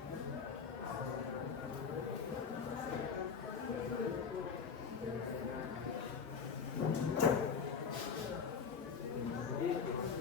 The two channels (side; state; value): right; quieter; 6.1 dB